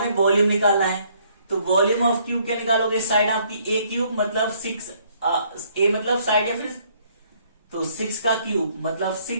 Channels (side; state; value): both; inverted; correlation -0.66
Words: वॉल्यूम निकालना है। तो वॉल्यूम ऑफ क्यूब क्या निकालोगे, साइड आपकी ए क्यूब मतलब 6, ए मतलब साइड या फिर, तो 6 का क्यूब मतलब